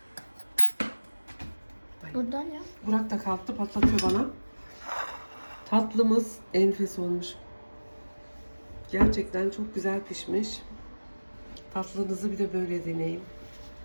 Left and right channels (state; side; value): inverted; both; correlation -1.00